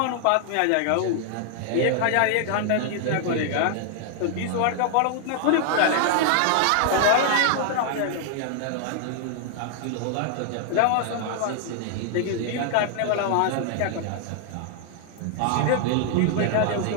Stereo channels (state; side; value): different; both; correlation 0.00